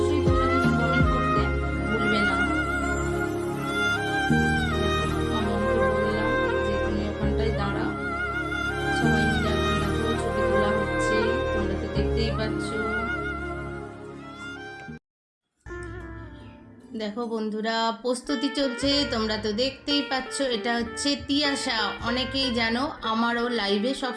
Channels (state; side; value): identical; both; correlation 1.00